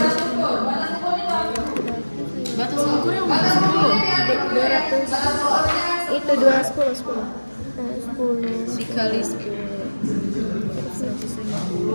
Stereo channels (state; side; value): inverted; both; correlation -1.00